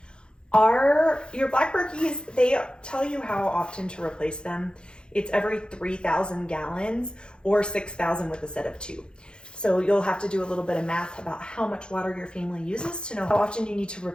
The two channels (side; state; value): right; late; 0.050 ms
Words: your black Berkeys, they tell you how often to replace them. It's every 3,000 gallons or 6,000 with a set of 2. So you'll have to do a little bit of math about how much water your family uses to know how often you need to